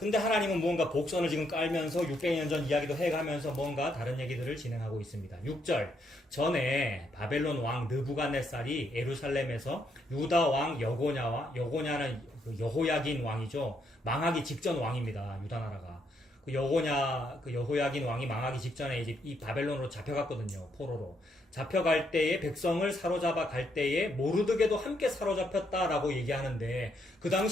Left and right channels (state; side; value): normal; both; correlation 0.75